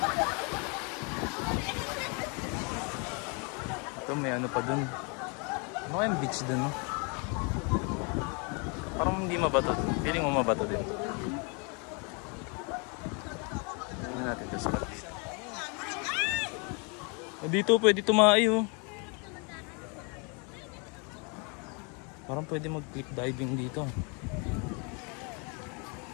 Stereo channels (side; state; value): right; quieter; 34.3 dB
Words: Ito may ano pa dun. Ano kayang beach dun no? Parang hindi mabato. Feeling mo mabato din. Tingnan natin ito spot dito. Dito pwede tumae oh. Parang pwede mag-cliff diving dito.